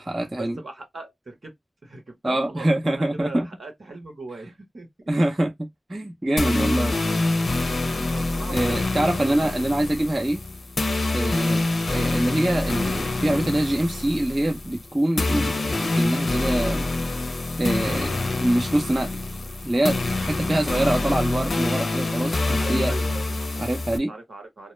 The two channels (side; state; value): both; normal; correlation 0.96